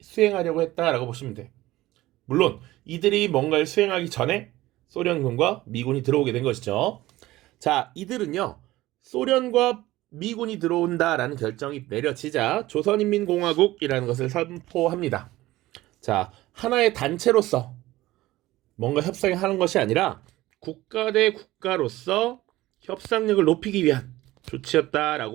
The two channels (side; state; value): left; quieter; 17.1 dB